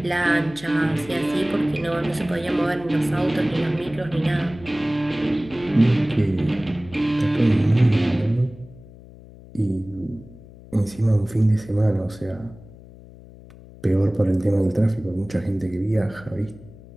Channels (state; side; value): noise; left; hum, 20 dB below the sound